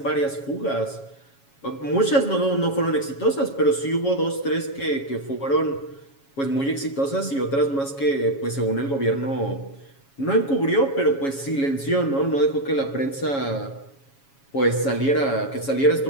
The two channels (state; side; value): late; right; 7.3 ms